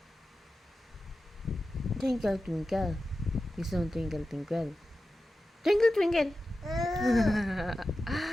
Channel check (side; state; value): both; normal; correlation 0.93